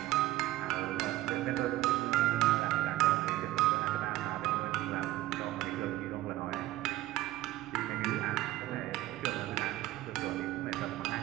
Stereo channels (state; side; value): quieter; left; 16.2 dB